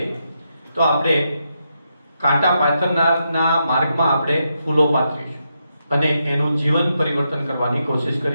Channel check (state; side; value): inverted; both; correlation -0.83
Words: તો આપણે કાંટા પાથરનારના માર્ગમાં આપણે ફૂલો પાથરીશું અને એનું જીવન પરિવર્તન કરવાની કોશિશ